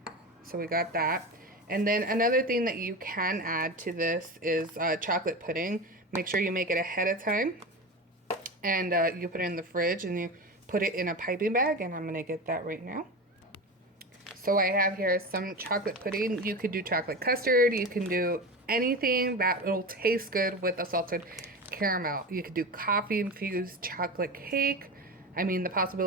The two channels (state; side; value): normal; both; correlation 0.25